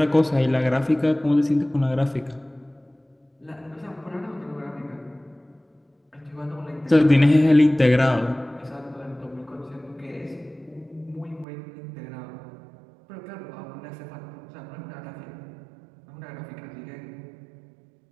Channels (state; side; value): drops out; left; at 11.5 s